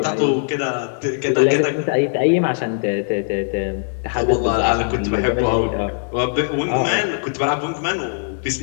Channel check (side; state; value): right; silent; digital silence